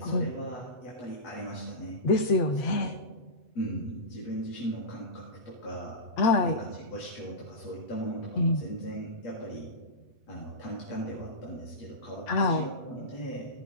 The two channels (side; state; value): right; late; 8.1 ms